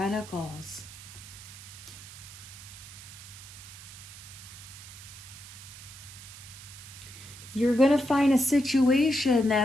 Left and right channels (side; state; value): right; noise; hiss, 15 dB below the sound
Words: You're going to find a situation